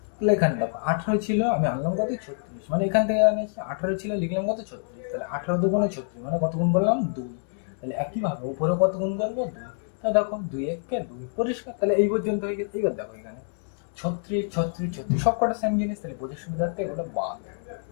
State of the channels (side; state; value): right; silent; digital silence